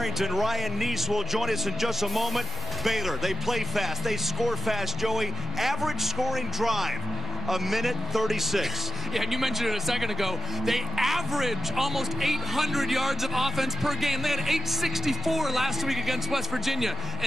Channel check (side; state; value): both; normal; correlation 0.93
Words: Ryan Neese will join us in just a moment. Baylor, they play fast, they score fast, Joey. Average scoring drive, 1:36. Yeah, and you mentioned it a second ago. They average almost 800 yards of offense per game. They had 864 last week against West Virginia,